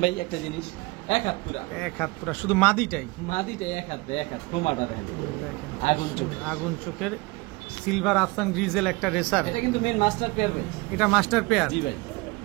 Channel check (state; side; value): quieter; left; 24.0 dB